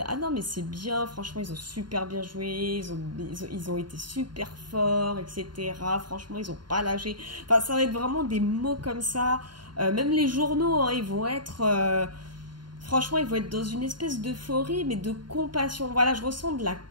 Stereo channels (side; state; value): left; late; 0.71 ms